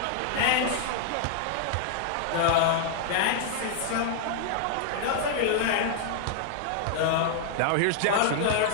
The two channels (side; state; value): both; different; correlation -0.01